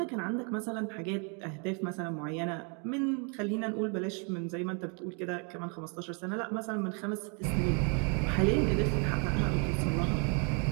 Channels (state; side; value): quieter; left; 36.8 dB